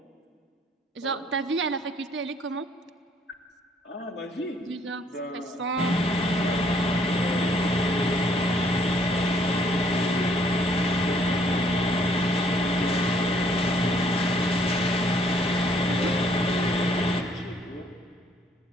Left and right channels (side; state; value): both; normal; correlation 0.64